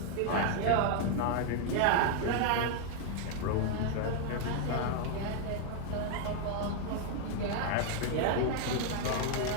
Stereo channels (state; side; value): different; both; correlation 0.00